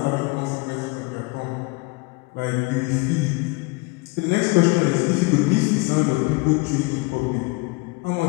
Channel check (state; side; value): quieter; right; 26.1 dB